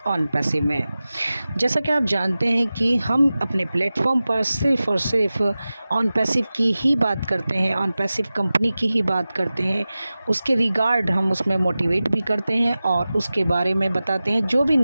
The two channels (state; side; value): inverted; both; correlation -0.96